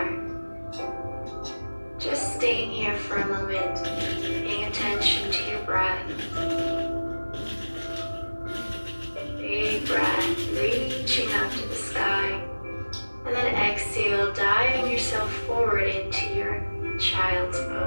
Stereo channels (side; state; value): both; inverted; correlation -1.00